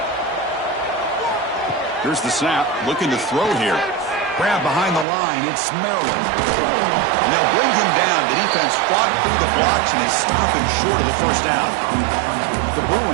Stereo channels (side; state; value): left; drops out; at 5.1 s